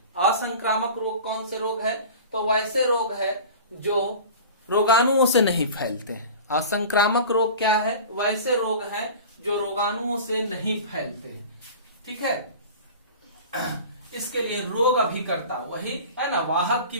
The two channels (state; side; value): inverted; both; correlation -0.37